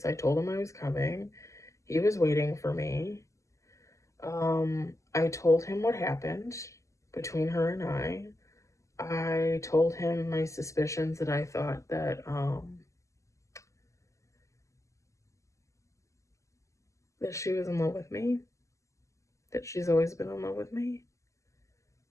I told him I was coming. He was waiting for me. I told him what happened between her and I. I told him my suspicions that I thought that she was in love with me, that she's always been in love with me.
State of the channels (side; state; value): right; late; 0.15 ms